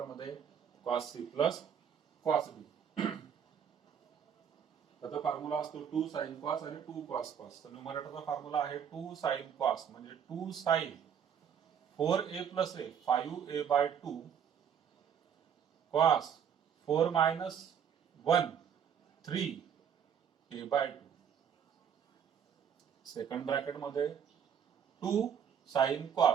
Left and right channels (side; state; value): left; quieter; 8.0 dB